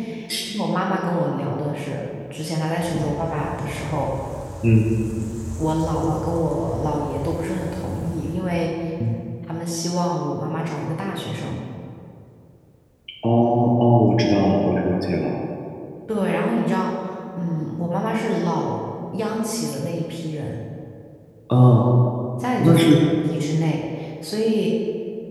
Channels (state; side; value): identical; both; correlation 1.00